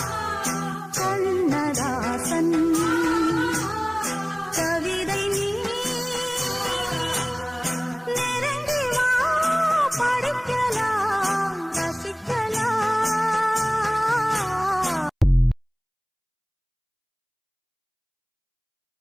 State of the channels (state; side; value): identical; both; correlation 1.00